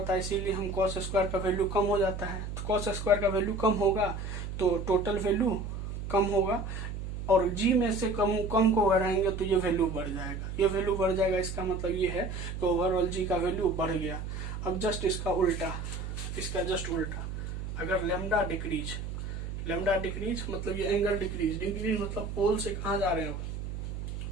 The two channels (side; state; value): right; noise; hum, 6 dB below the sound